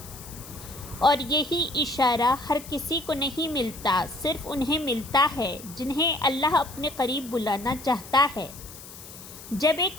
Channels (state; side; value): noise; left; hiss, 16 dB below the sound